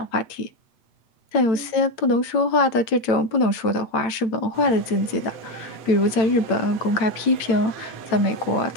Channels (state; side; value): late; right; 8.9 ms